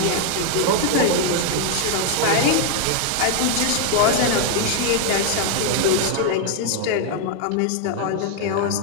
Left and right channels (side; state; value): both; different; correlation 0.00